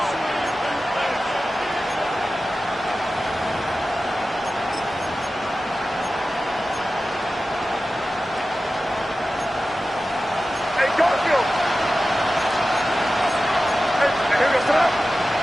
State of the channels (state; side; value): normal; both; correlation 0.94